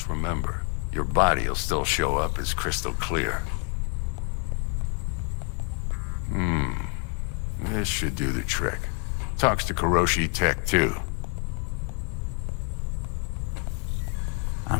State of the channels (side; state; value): right; quieter; 39.2 dB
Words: remember, your body will still show up as crystal clear. This should do the trick. Talks to Kuroshi Tech, too.